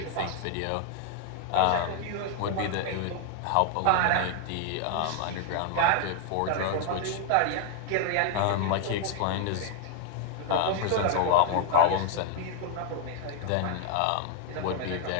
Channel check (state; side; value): different; both; correlation 0.00